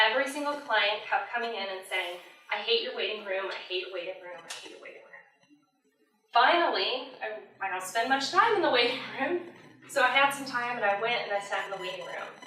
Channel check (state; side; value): identical; both; correlation 1.00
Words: every single client kept coming in and saying, I hate your waiting room, I hate your waiting room, I hate your waiting room. Finally, I don't spend much time in the waiting room, so I had some time and I went and I sat in the waiting room.